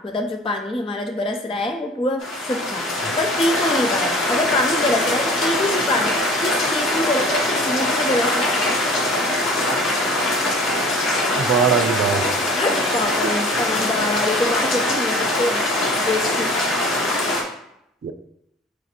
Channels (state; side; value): normal; both; correlation 0.44